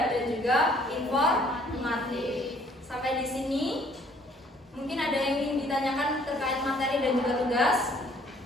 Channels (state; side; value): normal; both; correlation 0.60